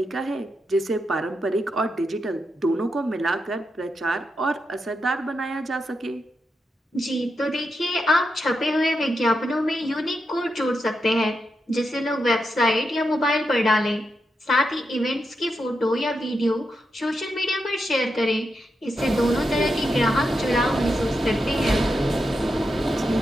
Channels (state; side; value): normal; both; correlation 0.86